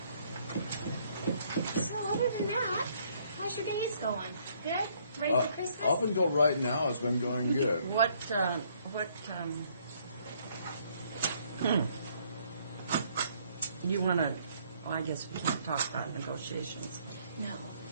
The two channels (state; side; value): inverted; both; correlation -0.66